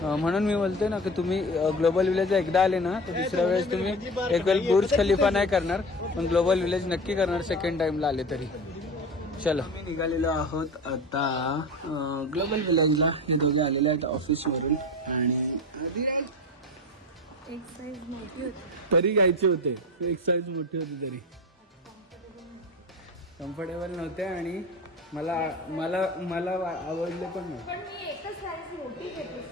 म्हणून मी बोलते ना की तुम्ही ग्लोबल विलेज एकदा आले ना तर दुसऱ्या वेळेस तुम्ही एक वेळ बुर्ज खलिफा नाही करणार, पण ग्लोबल विलेज नक्की करणार सेकंड टाइमला आले तरी. चलो निघालेलो आहोत आता ग्लोबल विलेजला. हे दोघे आलेले आहेत ऑफिसवरून आणि एक साईज मोठी होती तरी घ्यायचे होते. एक साईज मोठी होती तरी कम्फर्टेबल नव्हते आणि मला मला मला आवडले पण नाही. पण मी एकच साईज मोठी घेतली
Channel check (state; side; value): normal; both; correlation 0.29